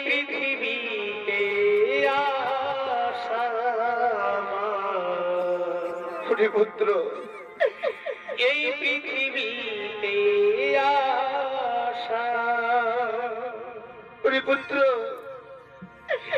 পৃথিবীতে আসা ওরে পুত্র এই পৃথিবীতে আসা ওরে পুত্র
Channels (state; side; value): identical; both; correlation 1.00